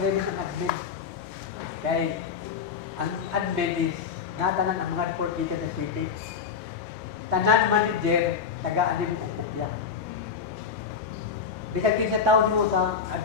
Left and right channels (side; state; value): right; quieter; 6.4 dB